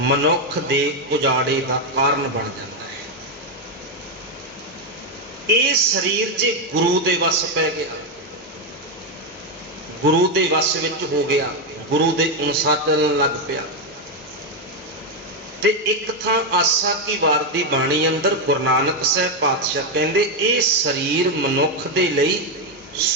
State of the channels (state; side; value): normal; both; correlation 0.05